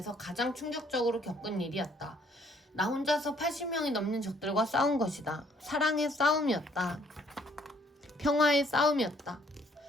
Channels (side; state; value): both; normal; correlation 0.64